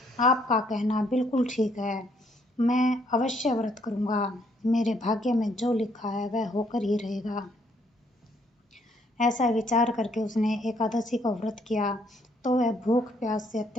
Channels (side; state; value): both; normal; correlation 0.69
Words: आपका कहना बिल्कुल ठीक है। मैं अवश्य व्रत करूंगा। मेरे भाग्य में जो लिखा है वह होकर ही रहेगा। ऐसा विचार करके उसने एकादशी का व्रत किया तो वह भूख प्यास से